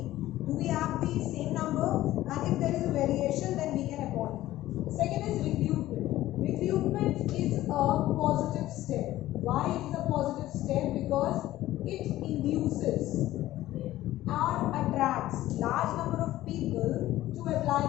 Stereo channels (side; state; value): right; quieter; 15.1 dB